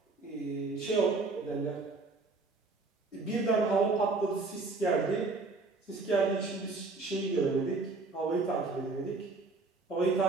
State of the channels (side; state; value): left; quieter; 3.7 dB